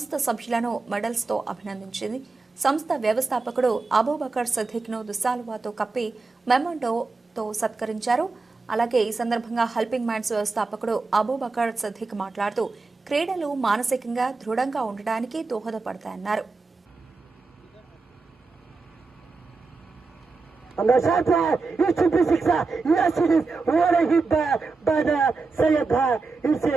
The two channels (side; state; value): left; quieter; 4.0 dB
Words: సభ్యులను మెడల్స్తో అభినందించింది. సంస్థ వ్యవస్థాపకుడు అబూబకర్ సిద్దిక్ను దుస్సాలువాతో కప్పి మెమోంటోతో సత్కరించారు. అలాగే ఈ సందర్భంగా హెల్పింగ్ మైండ్స్ వ్యవస్థాపకుడు అబూబకర్ సిద్దిక్ మాట్లాడుతూ క్రీడలు మానసికంగా దృఢంగా ఉండడానికి దోహదపడతాయన్నారు.